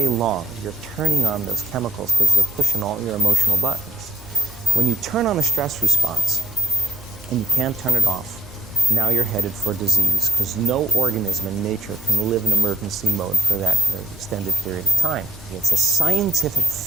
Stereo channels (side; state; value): both; normal; correlation 0.84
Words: long you're turning on those chemicals because they're pushing all your emotional buttons. When you turn on a stress response and you can't turn it off, now you're headed for disease, because no organism in nature can live in emergency mode for that extended period of time. It's a scientific